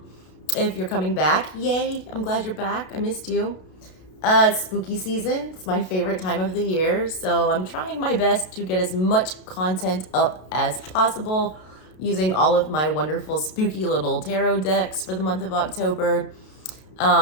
if you're coming back, yay, I'm glad you're back. I missed you. It's spooky season. It's my favorite time of the year, so I'm trying my best to get as much content up as possible using all of my wonderful spooky little tarot decks for the month of October.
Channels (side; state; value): right; late; 32 ms